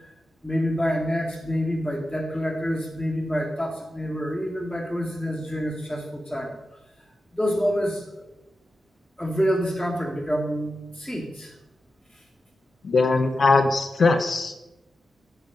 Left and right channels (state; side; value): normal; both; correlation 0.91